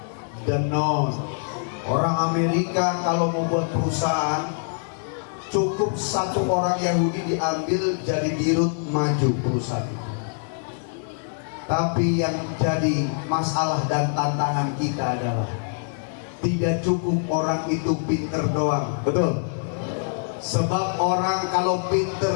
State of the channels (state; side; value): silent; right; 62 dB below the other